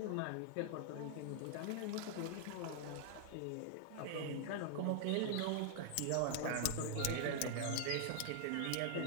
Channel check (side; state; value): both; different; correlation -0.01